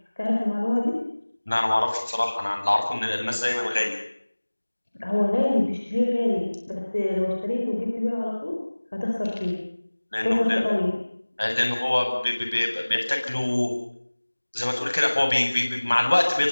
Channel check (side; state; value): both; inverted; correlation -1.00